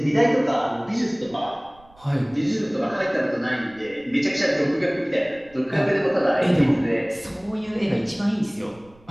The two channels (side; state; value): right; noise; rumble, 28 dB below the sound